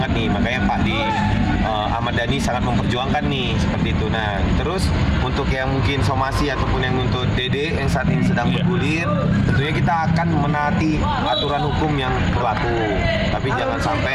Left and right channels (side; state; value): both; identical; correlation 1.00